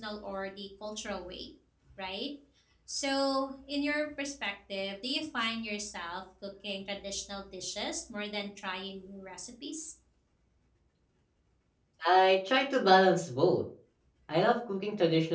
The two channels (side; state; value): both; identical; correlation 1.00